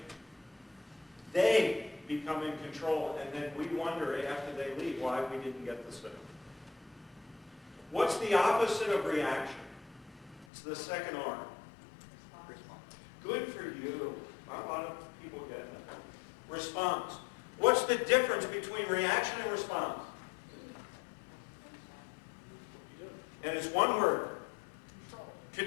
they become in control, and then we wonder after they leave why we didn't get the sale. What's the opposite of reaction? It's the second R. Response. Good for you. A lot of people get that. Response. What's the difference between reaction and response? And it's one word.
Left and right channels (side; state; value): right; drops out; at 10.5 s